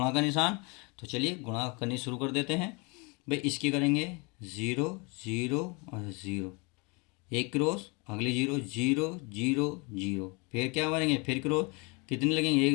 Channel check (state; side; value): quieter; right; 29.7 dB